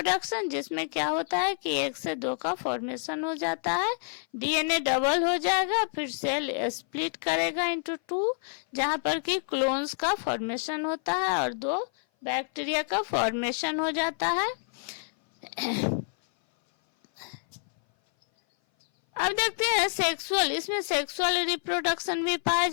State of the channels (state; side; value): silent; right; 57 dB below the other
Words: जिसमें क्या होता है कि 1 से 2 का फॉर्मेशन हो जाता है, DNA डबल हो जाएगा, फिर सेल स्प्लिट करेगा इनटू 2, जहां पर कि क्लोन्स का फॉर्मेशन होता है और 2 बैक्टीरिया का फॉर्मेशन हो जाता है। अब देखते हैं सेक्सुअल, इसमें सेक्सुअल रिप्रोडक्शन भी पाया